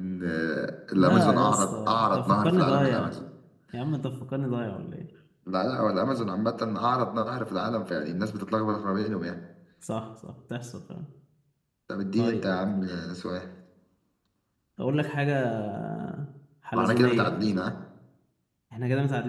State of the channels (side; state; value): both; identical; correlation 1.00